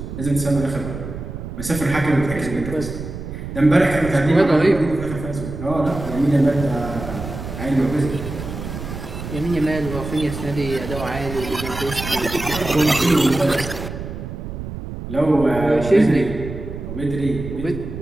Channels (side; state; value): right; noise; rumble, 8 dB below the sound